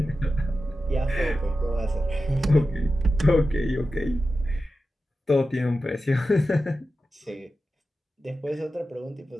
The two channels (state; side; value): normal; both; correlation 0.92